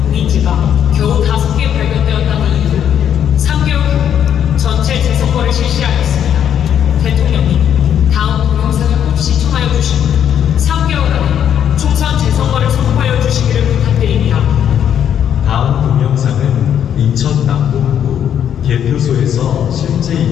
공인지가 겨우 5개 발견되었다는 이유로 3개월 후 전체 재선거를 실시하였습니다. 대통령님, 다음 동영상을 꼭 시청하여 주시고 3개월 안에 총선 재선거를 선포하여 주시기를 부탁드립니다. 다음 동영상은 인천 남동구 개표소에서 실제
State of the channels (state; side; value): quieter; right; 9.3 dB